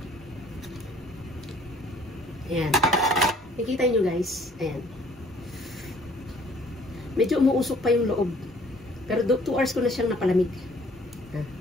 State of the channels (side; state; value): both; normal; correlation 0.57